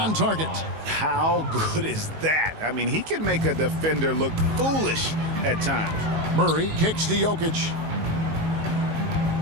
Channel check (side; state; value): left; late; 19 ms